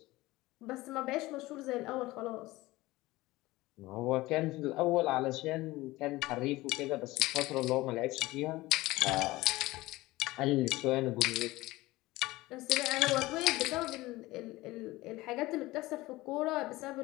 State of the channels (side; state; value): right; quieter; 19.2 dB